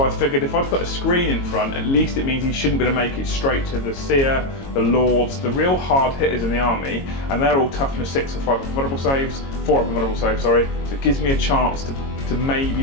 I figured if I put a screen in front, at least it means he shouldn't be able to make it straight to the Seer, the Lords, the real hard hitters in the army, and they're all toughness 6 or 5 up invulnerable saves, 4 up invulnerable saves, sorry. So it gives me a chance to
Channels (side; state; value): right; late; 22 ms